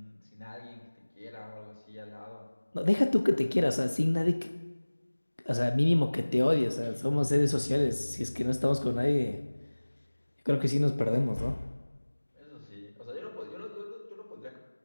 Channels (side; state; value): both; inverted; correlation -1.00